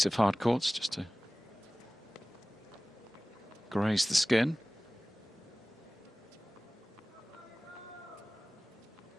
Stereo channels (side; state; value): both; normal; correlation 0.98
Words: hard courts just to graze the skin.